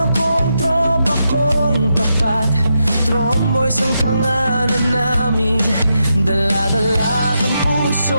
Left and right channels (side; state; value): both; inverted; correlation -0.84